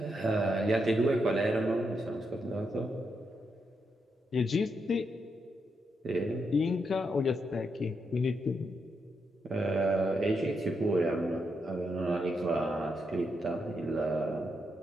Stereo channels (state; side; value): normal; both; correlation 0.82